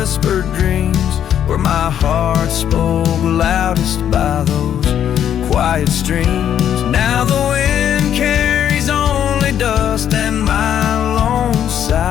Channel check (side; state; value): right; quieter; 9.8 dB